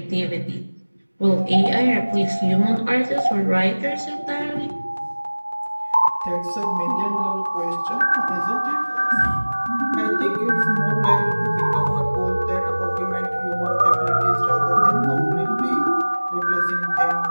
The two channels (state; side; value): inverted; both; correlation -1.00